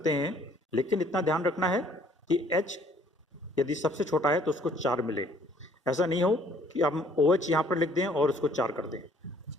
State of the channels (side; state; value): both; normal; correlation 0.60